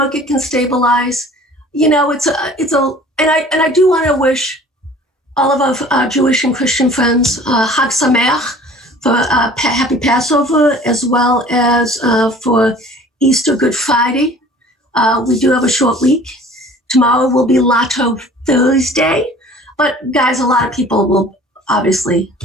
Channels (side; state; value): both; normal; correlation 0.48